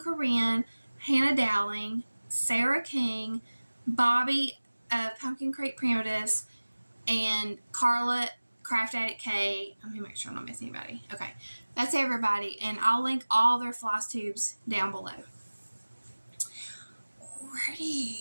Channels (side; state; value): both; inverted; correlation -1.00